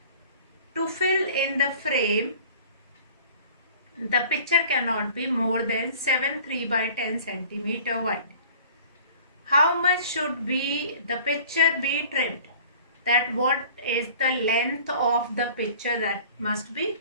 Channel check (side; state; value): both; inverted; correlation -0.47